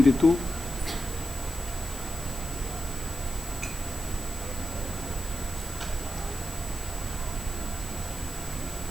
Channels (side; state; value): left; noise; hiss, 12 dB below the sound